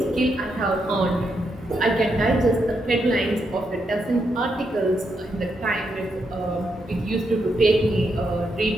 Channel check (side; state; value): both; normal; correlation 0.81